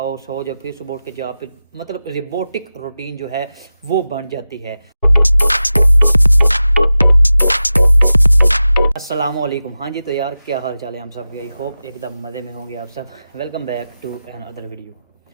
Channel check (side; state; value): both; inverted; correlation -0.93